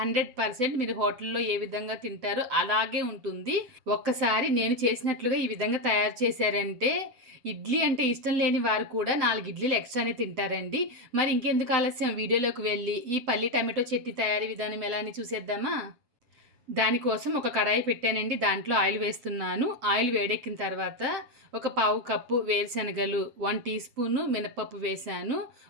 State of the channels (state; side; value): late; left; 7.9 ms